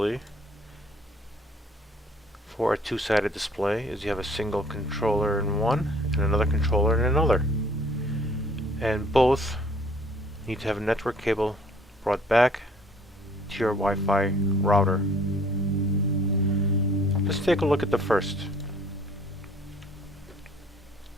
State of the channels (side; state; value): both; normal; correlation 0.57